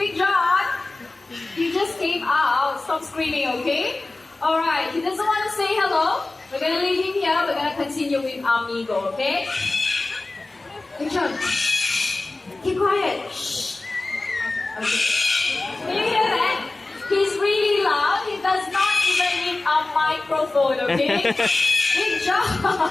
John, you just came out. Stop screaming, okay? All right. He doesn't want to say hello. We're gonna leave him here. We're gonna continue with Amigo, okay? Big John, keep quiet. Shh. Okay. Can you hear that? He's really loud. He does not even need a microphone, okay? Big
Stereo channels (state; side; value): quieter; right; 3.1 dB